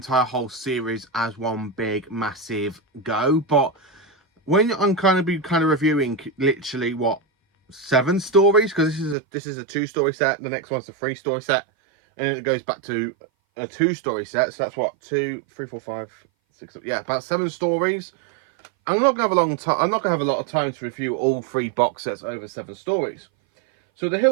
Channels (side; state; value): left; drops out; at 9.2 s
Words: whole series as one big, massive go, but when I'm going to be reviewing literally, 7 stories, because this is a 2-story set, the next one's a 3-story set, and then it goes back to a 2-story set. So that's what, 2, 3, 4, 5, 6, yeah, about 7 stories. I'm not gonna have a long time. I'm not gonna have a lot of time to review all 3 box sets over 7 stories. So the